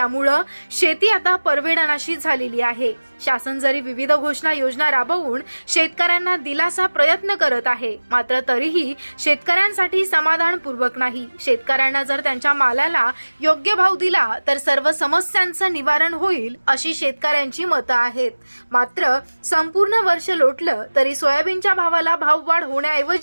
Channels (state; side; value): inverted; both; correlation -1.00